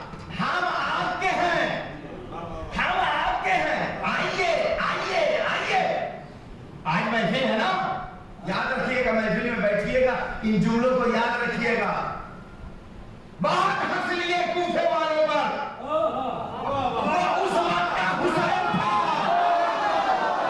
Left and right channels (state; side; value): identical; both; correlation 1.00